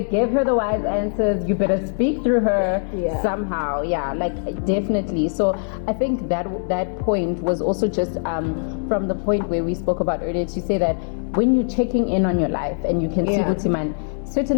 her the wise answers. You better speak through her somehow. Yeah, like definitely. So I think that point was also just from the point where we spoke about earlier, to say that when you're checking in on your life and you can see Utiman,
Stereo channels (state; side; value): silent; right; 64 dB below the other